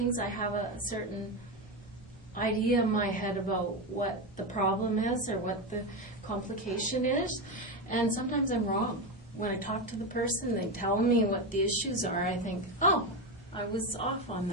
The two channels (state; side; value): normal; both; correlation 0.14